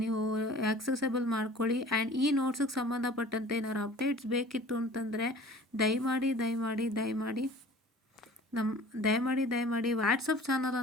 ನೀವು ಆಕ್ಸೆಸಬಲ್ ಮಾಡ್ಕೊಳ್ಳಿ. ಆ್ಯಂಡ್ ಈ ನೋಟ್ಸಿಗೆ ಸಂಬಂಧಪಟ್ಟಂತೆ ಏನಾದ್ರು ಅಪ್ಡೇಟ್ಸ್ ಬೇಕಿತ್ತು ಅಂತಂದರೆ ದಯಮಾಡಿ ವಾಟ್ಸಪ್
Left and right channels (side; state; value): both; normal; correlation 0.46